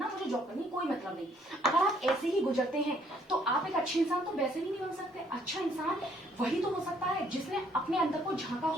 मुझे जॉब करनी, कोई मतलब नहीं, अगर आप ऐसे ही गुजरते हैं तो आप एक अच्छे इंसान तो वैसे ही नहीं बन सकते। अच्छा इंसान वही तो हो सकता है जिसने अपने अंदर को झांका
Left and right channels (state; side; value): normal; both; correlation 0.65